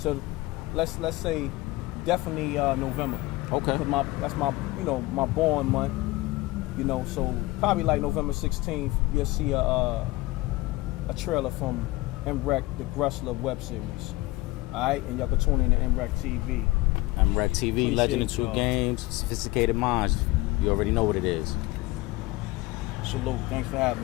let's say definitely November. Okay. Cause that's my my born month. You know, so probably like November 16th, you'll see a trailer from Mreck the Grustler web series. Alright, and y'all can tune in to Mreck TV. Mreck TV, Legend of Two Games, Sophisticated Mindz. You already know what it is. Salute. Thanks for having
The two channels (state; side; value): quieter; right; 20.3 dB